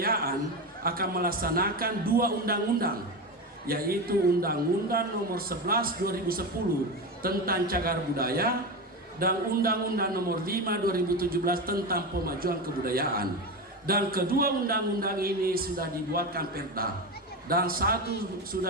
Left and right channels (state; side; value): normal; both; correlation 0.20